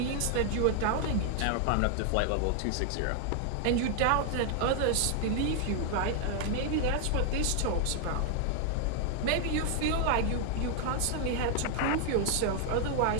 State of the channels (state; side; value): different; both; correlation 0.00